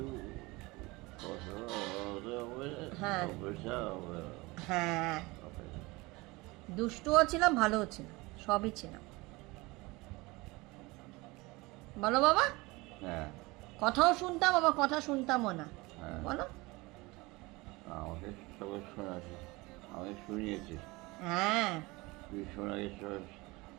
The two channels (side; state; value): left; quieter; 23.0 dB